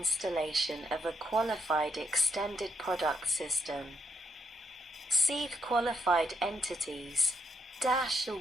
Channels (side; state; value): both; normal; correlation 0.76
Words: of a qualified extended product system. See qualified entities. 1.